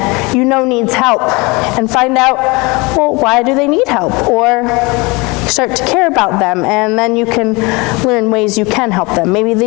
you know needs help, and find out, well, why do they need help? Or start to care about them, and then you can learn ways you can help them. Maybe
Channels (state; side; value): quieter; right; 25.9 dB